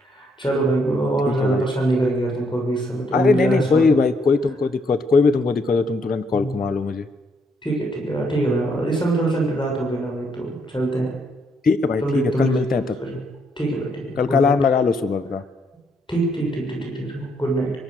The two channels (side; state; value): both; normal; correlation 0.73